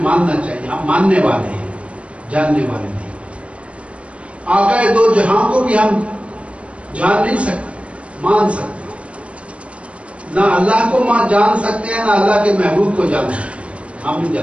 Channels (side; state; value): left; late; 0.061 ms